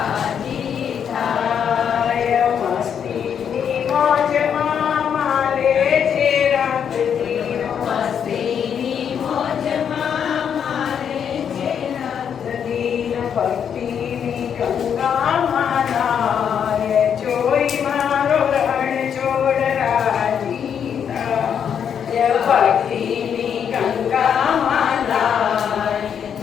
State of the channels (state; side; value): quieter; right; 8.0 dB